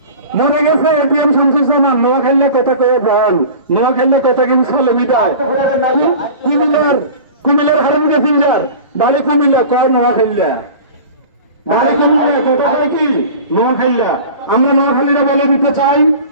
মনে গেছে এটিএম শামসুজ্জামান নোয়াখালী কথা কয়ে প্রাণ, নোয়াখালী কথা কিন্তু চলে মিটায়। কুমিল্লার হারান প্যাসেঞ্জার বাড়ি কুমিল্লা কয় নোয়াখালী, বাড়ি কুমিল্লা কথা কয় কি নোয়াখালী। আমরা নোয়াখালীরা বলে দিতে চাই,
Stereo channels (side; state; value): both; inverted; correlation -0.37